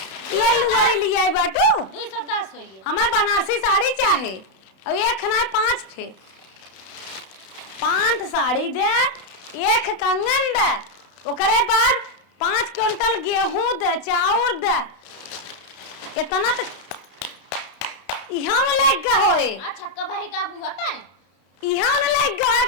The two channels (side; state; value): right; late; 31 ms